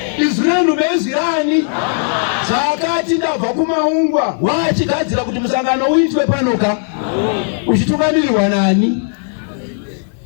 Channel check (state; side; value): silent; right; 65 dB below the other